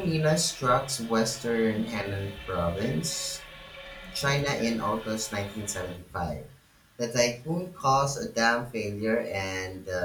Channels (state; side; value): identical; both; correlation 1.00